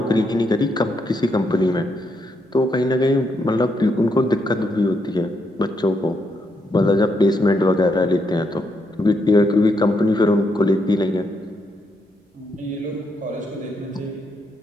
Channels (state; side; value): normal; both; correlation 0.78